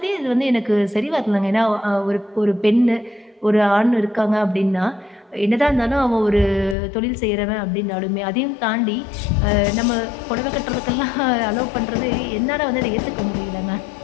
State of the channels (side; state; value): right; drops out; at 6.8 s